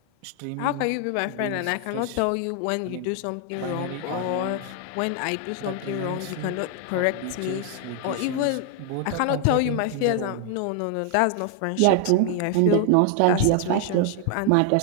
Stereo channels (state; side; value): different; both; correlation 0.00